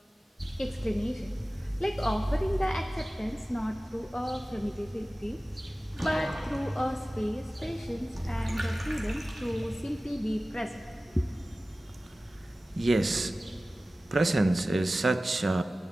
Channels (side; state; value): both; normal; correlation 0.97